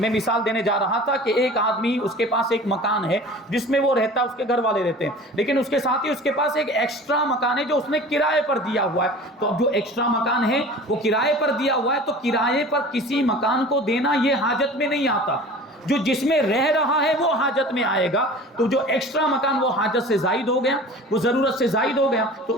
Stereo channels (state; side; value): normal; both; correlation 0.41